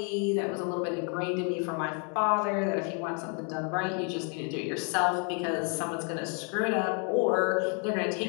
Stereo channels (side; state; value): right; quieter; 38.2 dB